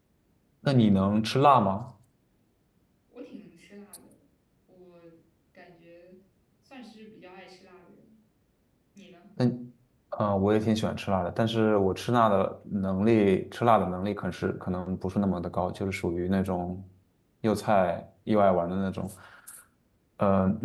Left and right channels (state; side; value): identical; both; correlation 1.00